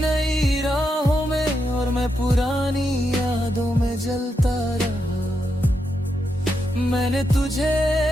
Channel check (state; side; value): normal; both; correlation 0.84